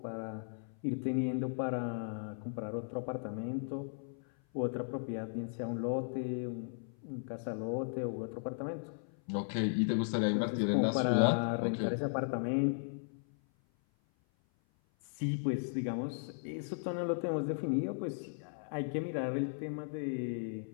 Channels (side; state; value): right; silent; 53 dB below the other